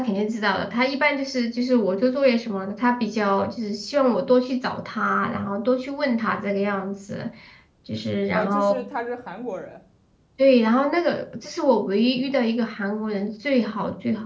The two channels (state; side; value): identical; both; correlation 1.00